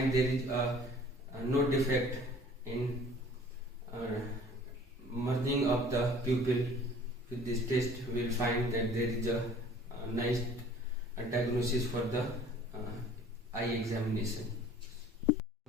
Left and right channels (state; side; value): normal; both; correlation 0.50